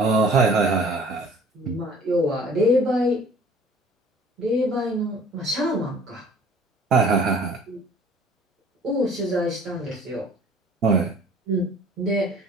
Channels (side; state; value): both; normal; correlation 0.51